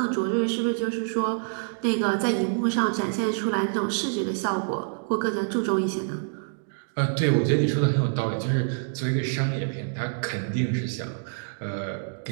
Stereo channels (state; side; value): silent; left; digital silence